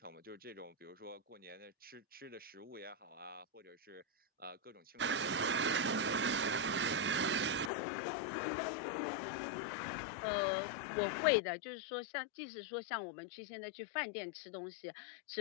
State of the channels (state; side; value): drops out; right; at 7.7 s